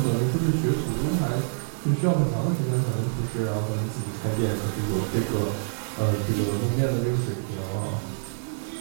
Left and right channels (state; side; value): silent; left; digital silence